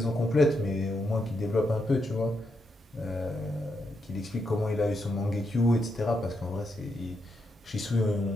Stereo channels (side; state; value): both; normal; correlation 0.81